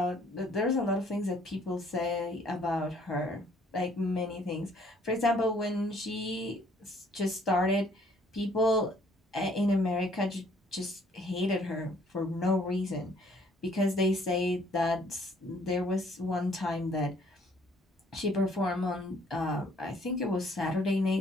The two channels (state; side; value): normal; both; correlation 0.62